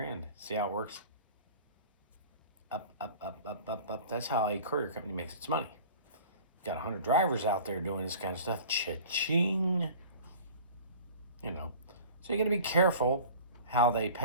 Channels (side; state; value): both; inverted; correlation -0.42